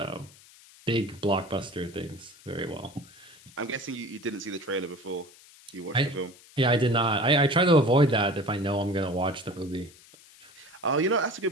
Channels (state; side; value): noise; left; hiss, 23 dB below the sound